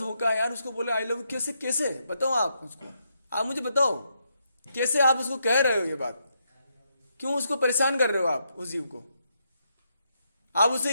है यार। उसको बोले आई लव यू, कैसे कैसे बताओ आप उसको, आप मुझे बताओ कैसे आप उसको कह रहे हो ये बात? क्यों उसको परेशान कर रहे हो आप उस जीव को? आप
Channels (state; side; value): inverted; both; correlation -0.80